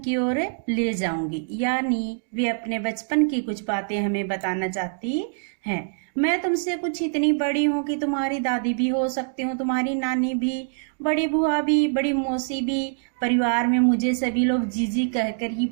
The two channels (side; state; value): left; silent; digital silence